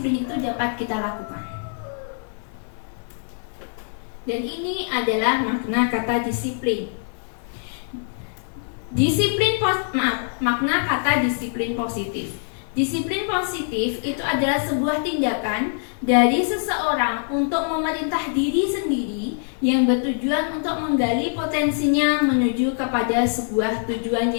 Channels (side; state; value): right; silent; digital silence